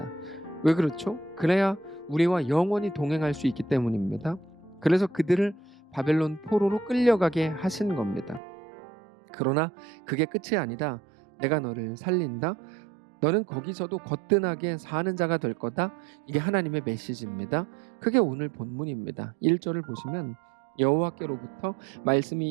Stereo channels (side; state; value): left; drops out; at 8.4 s